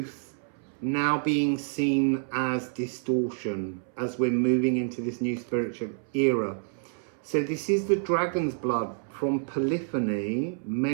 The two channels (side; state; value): left; silent; 59 dB below the other